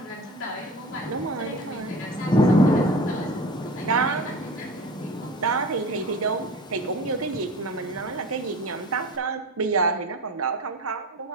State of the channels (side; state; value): both; normal; correlation 0.34